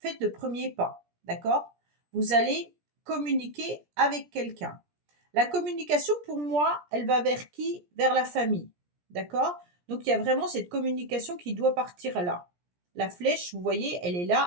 le premier pas. D'accord? Vous allez communiquer avec quelqu'un. La communication, pour moi, elle va vers qui? Vers la famille. D'accord? Donc il y a vraiment cette communication qui doit partir là. La flèche, vous voyez, elle est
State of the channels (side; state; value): left; late; 17 ms